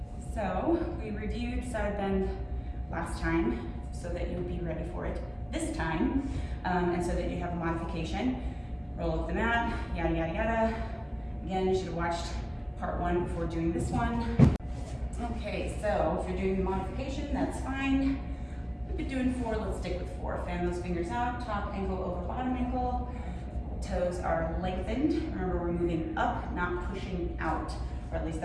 So we reviewed side bend last time so that you would be ready for it this time, and so that you have a modification. Roll up the mat, yada, yada, yada. Again, you should have watched part 1 before doing this one. Okay, so if you're doing the modification, that's fine. We've been doing 4, let's stick with 4. Fan those fingers out, top ankle over bottom ankle. Toes are lengthened. Remember, we're moving up, not pushing out, or at least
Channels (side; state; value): both; identical; correlation 1.00